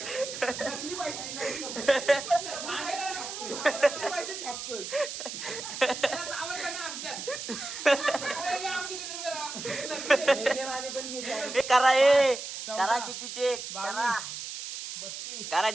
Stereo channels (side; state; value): right; noise; hiss, 8 dB below the sound